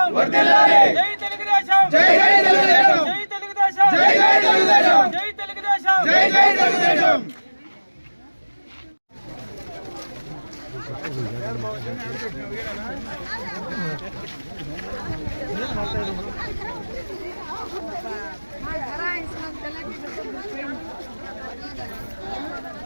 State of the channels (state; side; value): inverted; both; correlation -1.00